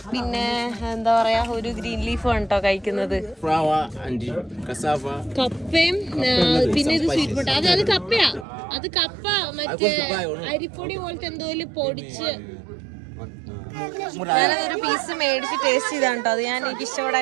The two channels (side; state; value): left; drops out; at 8.5 s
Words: പിന്നെ എന്താ പറയാ ഒരു ഗ്രീൻ ലീഫും ആണ് കേട്ടോ കഴിക്കുന്നത്. കപ്പയും പിന്നെ ഇത് സ്വീറ്റ് പൊട്ട. അത് കപ്പയാ. അത് കപ്പ മറ്റേ അരിപ്പൊടി പോലത്തെ എന്തോ പൊടിച്ച്. ഞാനതൊരു പീസ് മേടിച്ച് ടേസ്റ്റ് ചെയ്താണ് കേട്ടോ. അത് ഞാൻ എനിക്ക്